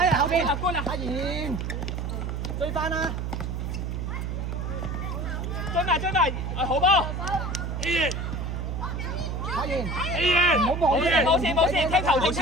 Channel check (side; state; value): right; noise; hum, 3 dB below the sound